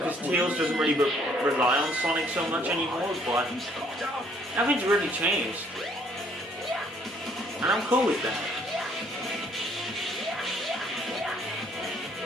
Tails doesn't really rely on Sonic so much anymore, but nothing's really changed. And I'm cool with that.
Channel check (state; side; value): normal; both; correlation 0.63